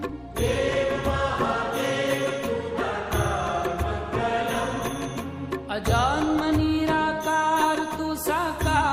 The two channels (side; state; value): both; identical; correlation 1.00